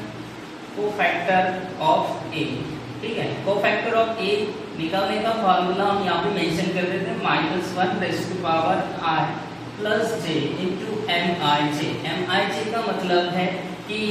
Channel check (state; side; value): identical; both; correlation 1.00